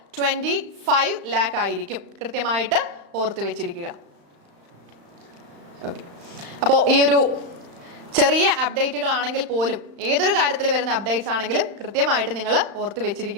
25 lakh ആയിരിക്കും. കൃത്യമായിട്ട് ഓർത്ത് വെച്ചിരിക്കുക. ഓക്കെ, അപ്പോൾ ഈ ഒരു ചെറിയ അപ്ഡേറ്റുകളാണെങ്കിൽ പോലും ഏതൊരു കാര്യത്തിൽ വരുന്ന അപ്ഡേറ്റ്സ് ആണെങ്കിലും കൃത്യമായിട്ട് നിങ്ങൾ ഓർത്ത്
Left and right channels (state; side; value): late; left; 35 ms